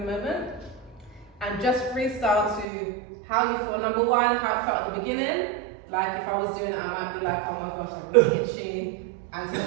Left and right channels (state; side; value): drops out; left; at 2.7 s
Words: And just freestyle to how you feel. Number one, how it felt at the beginning. Like if I was doing it, I might be like, oh my gosh, I'm really itchy. And to